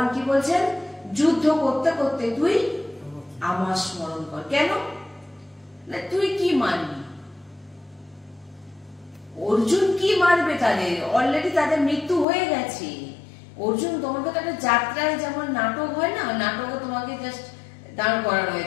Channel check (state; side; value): drops out; right; at 12.2 s